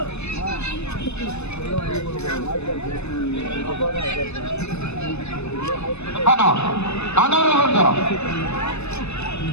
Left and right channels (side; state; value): right; late; 0.81 ms